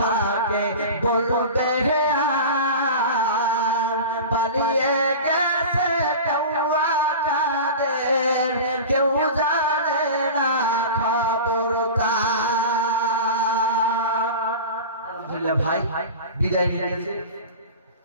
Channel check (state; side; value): inverted; both; correlation -0.32